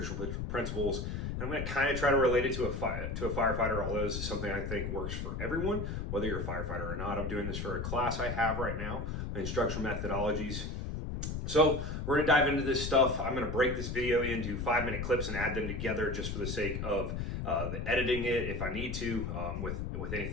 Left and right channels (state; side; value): noise; left; rumble, 4 dB below the sound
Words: principles. I'm going to kind of try to relate it to a firefighter, although this is something I think works for everyone, whether you're a firefighter or not. I'm doing this for a class I have right now, instructional methodologies. So we're going to dive into this stuff. I'm going to break this video into 5-minute clips and add them together just for the sake of editing it if I need to, with